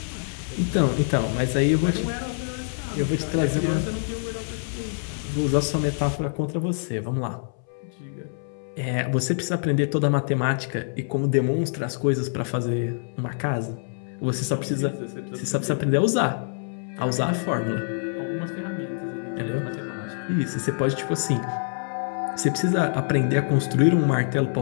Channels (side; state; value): right; silent; 61 dB below the other